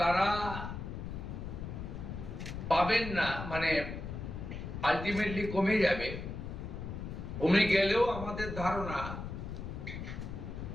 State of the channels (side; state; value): left; noise; rumble, 7 dB below the sound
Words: তারা পাবেন না, মানে আলটিমেটলি কমে যাবে। কমে গেলেও আমাদের ধারণা